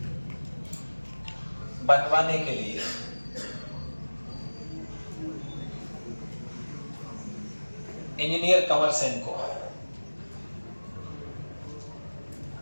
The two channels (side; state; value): both; inverted; correlation -1.00